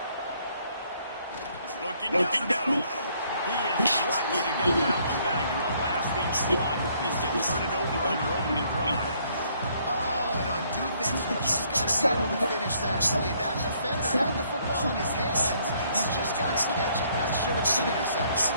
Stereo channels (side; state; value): both; inverted; correlation -0.66